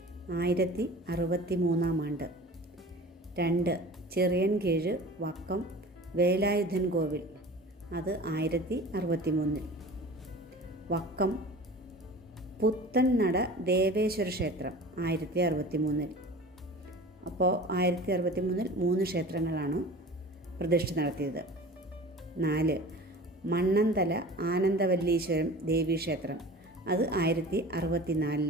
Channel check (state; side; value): normal; both; correlation 0.39